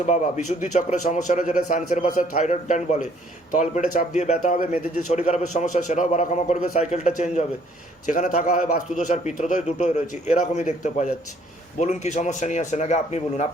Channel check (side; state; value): both; normal; correlation 0.62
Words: বাবা। বিশুদ্ধি চক্রের সমস্যা রয়েছে, যেটা সায়েন্সের ভাষায় থাইরয়েড গ্ল্যান্ড বলে, তলপেটে চাপ দিয়ে ব্যথা হবে, মেয়েদের যে শরীর খারাপের সমস্যা সেটাও বাড়াকমা করবে, সাইকেলটা চেঞ্জ হবে। যেখানে থাকা হয় বাস্তুদোষ আর পিতৃদোষ দুটোই রয়েছে, এরকমই দেখতে পাওয়া যাচ্ছে। বলুন কি সমস্যা নিয়ে আসেন, আগে আপনি বলুন।